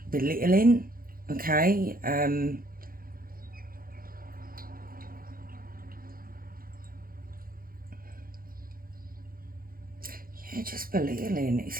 belittling, okay? Yeah, just belittling. It's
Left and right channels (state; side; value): late; left; 0.42 ms